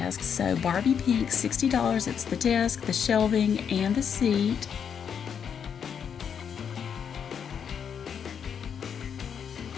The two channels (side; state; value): right; quieter; 7.6 dB